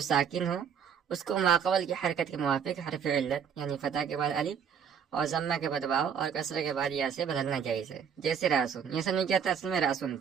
साकिन हो उसको माक़बल की हरकत के मुवाफिक हरफ इल्लत यानी फतह के बाद अलिफ और ज़म्मा के बाद वाव और कसरे के बाद या से बदलना जायज़ है। जैसे रासुन, ये समझ क्या था, असल में रासुन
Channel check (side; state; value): left; quieter; 7.5 dB